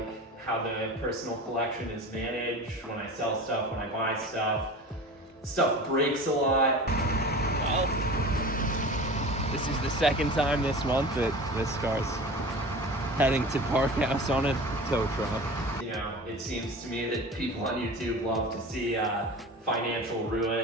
how the personal collection is managed, when I sell stuff, when I buy stuff. Stuff breaks a lot. Well, this is the second time this month that this car's heading to Park House on a tow truck. It seems to me that people on YouTube love to see financial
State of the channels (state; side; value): normal; both; correlation 0.35